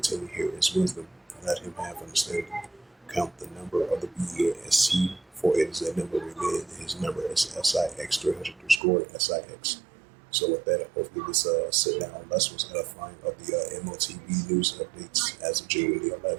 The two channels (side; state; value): left; drops out; at 8.8 s